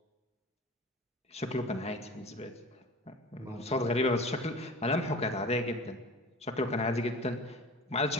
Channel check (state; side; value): normal; both; correlation 0.38